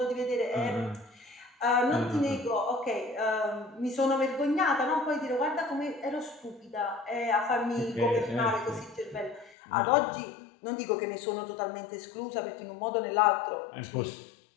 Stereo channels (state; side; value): drops out; right; at 9.6 s